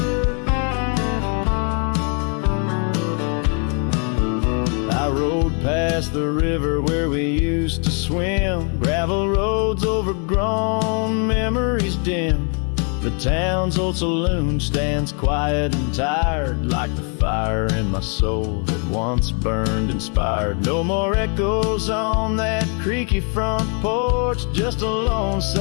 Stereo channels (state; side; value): quieter; right; 39.7 dB